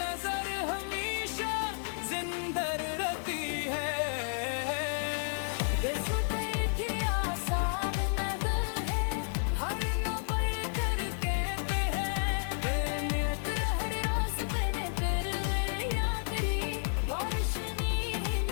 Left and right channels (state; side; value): silent; right; digital silence